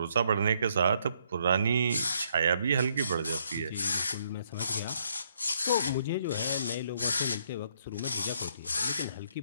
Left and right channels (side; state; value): both; inverted; correlation -0.71